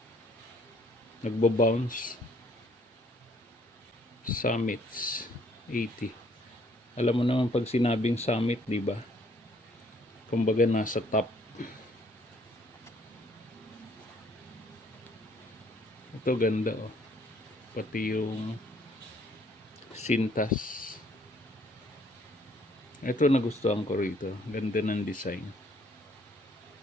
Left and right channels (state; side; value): normal; both; correlation 0.64